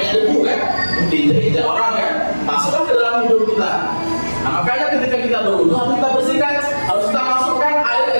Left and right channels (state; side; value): inverted; both; correlation -1.00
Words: debu kan? Diinjak orang kan? Masukkan ke dalam hidung kita. Nah, makanya ketika kita berwudhu harus kita bersihkan, harus kita masukkan air